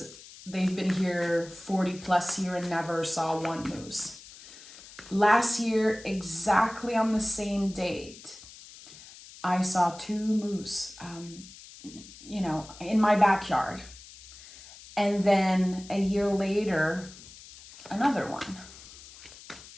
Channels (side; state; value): left; noise; hiss, 18 dB below the sound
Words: they've been here 40 plus years and never saw one moose. Last year, exactly on the same date, I saw two moose, in my backyard. And then a year later, another one.